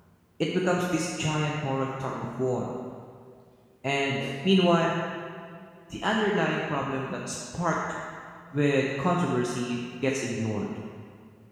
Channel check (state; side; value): identical; both; correlation 1.00